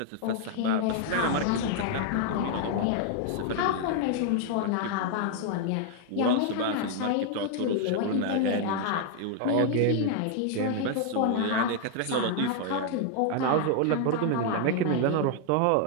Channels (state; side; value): different; both; correlation 0.00